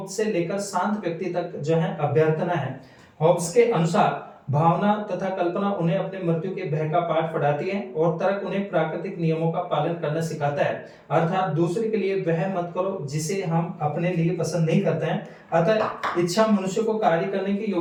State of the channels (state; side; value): identical; both; correlation 1.00